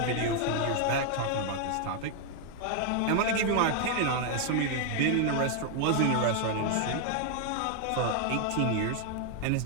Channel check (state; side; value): different; both; correlation 0.00